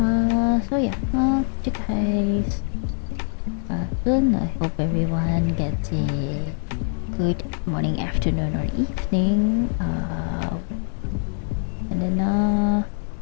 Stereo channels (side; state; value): right; silent; 55 dB below the other